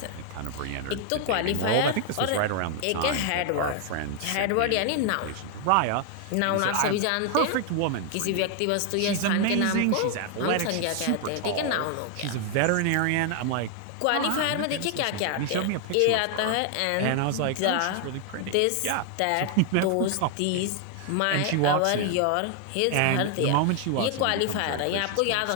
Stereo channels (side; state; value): both; different; correlation 0.00